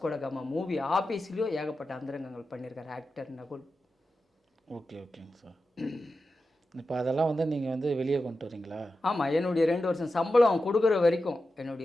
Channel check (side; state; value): both; normal; correlation 0.91